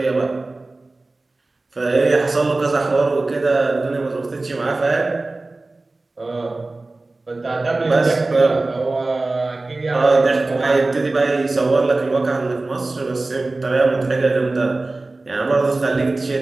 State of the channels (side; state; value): left; quieter; 3.2 dB